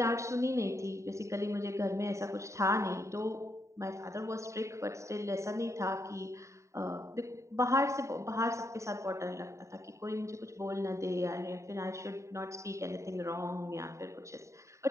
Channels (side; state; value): left; late; 0.14 ms